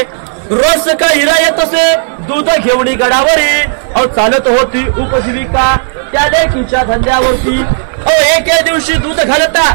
रोज का हिरा येत असे दूध घेऊन गडावरी अहो चालत होती उपजीविका त्या लेकीच्या धंद्यावरती अहो एके दिवशी दूध घालता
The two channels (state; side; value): silent; left; digital silence